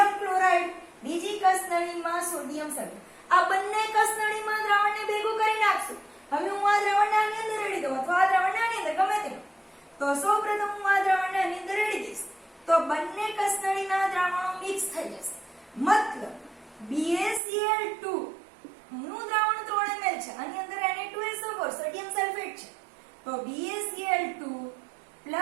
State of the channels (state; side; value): drops out; left; at 17.4 s